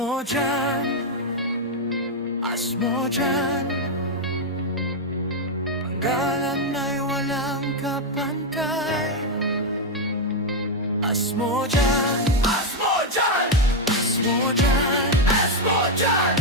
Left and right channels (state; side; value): normal; both; correlation 0.02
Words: Asmodyan, panggalan ay walang kapantay. Asmodyan, Asmodyan, Asmodyan, Asmodyan,